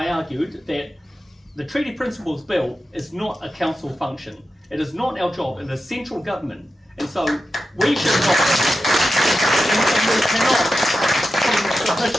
argued that the Treaty Principles Bill is not a council function. It is not our job. It is central government. And so we should not, and we cannot put in a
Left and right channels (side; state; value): both; normal; correlation 0.91